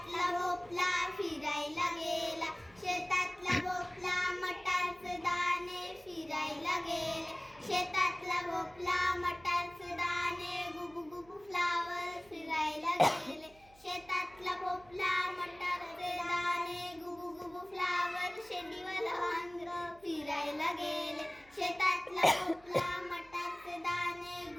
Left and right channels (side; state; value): right; noise; hum, 26 dB below the sound